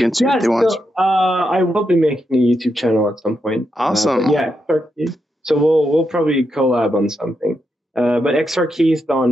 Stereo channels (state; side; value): normal; both; correlation 0.84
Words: to if they want? I will be making a YouTube channel at some point. Awesome. XR Keith. So we'll probably collab on something. But XR Keith on